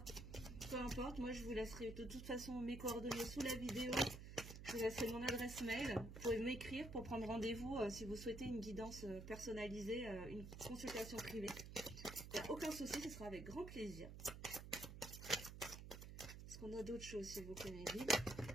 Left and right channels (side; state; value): right; noise; hum, 10 dB below the sound